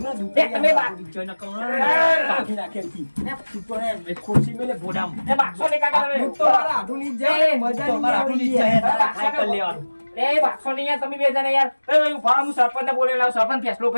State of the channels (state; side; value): inverted; both; correlation -1.00